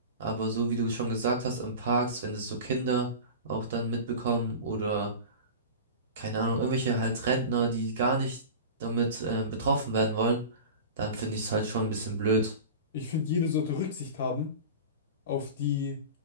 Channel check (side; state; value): both; inverted; correlation -0.32